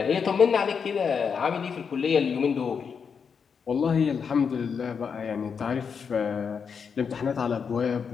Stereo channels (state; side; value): quieter; right; 6.3 dB